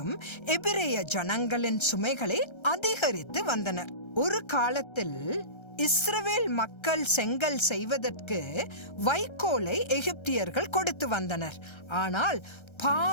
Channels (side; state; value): right; late; 1.3 ms